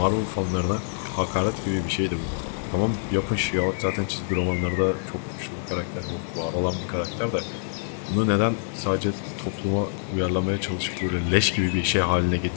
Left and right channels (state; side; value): silent; right; digital silence